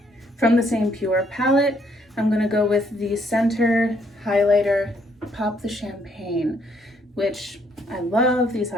from the same Pure palette. I'm gonna go with the center highlighter, Pop the Champagne, which I love these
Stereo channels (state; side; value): normal; both; correlation 0.69